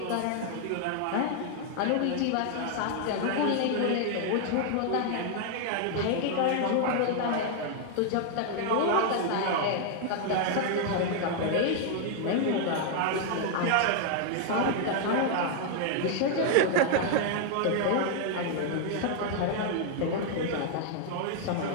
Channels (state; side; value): different; both; correlation 0.00